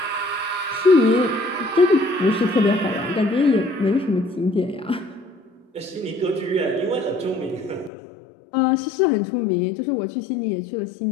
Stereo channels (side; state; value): right; drops out; at 7.9 s